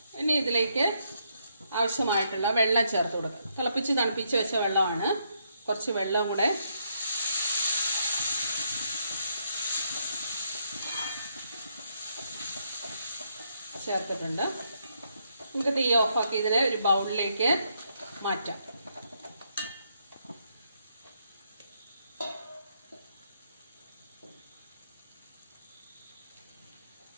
ഇനി ഇതിലേക്ക് ആവശ്യമായിട്ടുള്ള വെള്ളം ചേർത്ത് കൊടുക്കുക. തിളപ്പിച്ച് തണുപ്പിച്ച് വെച്ച വെള്ളമാണ്. കുറച്ച് വെള്ളം കൂടെ ചേർത്തിട്ടുണ്ട്. നമുക്ക് തീ ഓഫാക്കി ഇതിനെ ഒരു ബൗളിലേക്ക് മാറ്റാം.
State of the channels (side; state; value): both; inverted; correlation -0.75